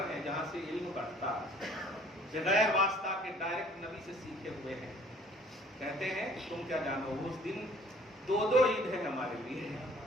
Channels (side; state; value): both; normal; correlation 0.55